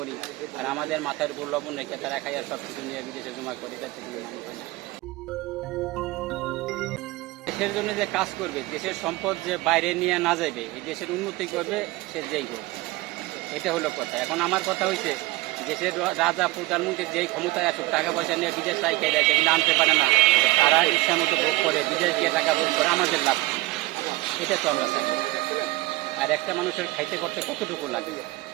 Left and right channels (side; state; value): left; quieter; 20.0 dB